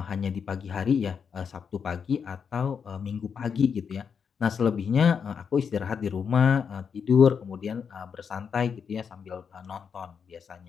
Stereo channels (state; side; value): quieter; right; 6.6 dB